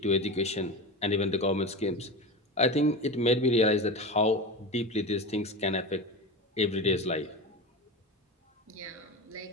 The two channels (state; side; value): normal; both; correlation 0.25